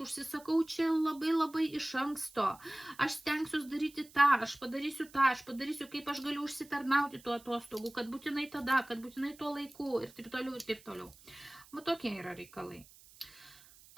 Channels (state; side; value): noise; right; hiss, 23 dB below the sound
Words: užsisakau čia labai iš anksto, aš stengsiuos daryti tą, aš padarysiu, kaip aš galiu užsitarnauti tų atostogų, kad būtinai tada, kad būtinai tuo laiku ir taip toliau, ir taip toliau. Va tokie yra reikalai.